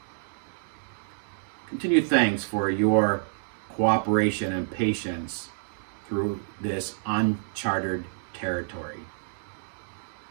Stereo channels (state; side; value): silent; left; digital silence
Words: Continued thanks for your cooperation and patience through this uncharted territory.